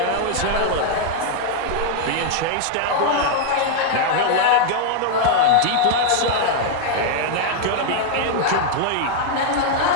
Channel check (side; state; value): both; different; correlation 0.00